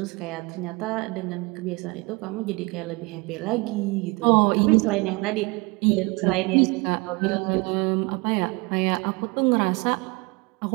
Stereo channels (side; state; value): left; quieter; 26.6 dB